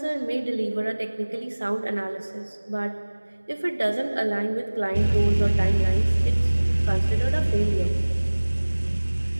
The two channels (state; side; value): inverted; both; correlation -1.00